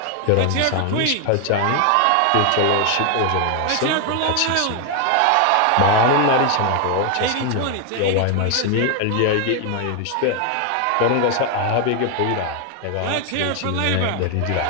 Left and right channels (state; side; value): different; both; correlation 0.00